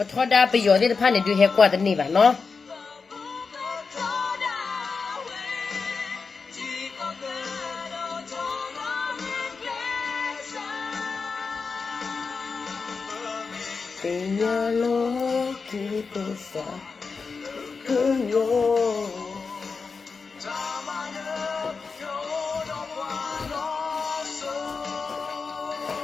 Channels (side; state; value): right; quieter; 4.8 dB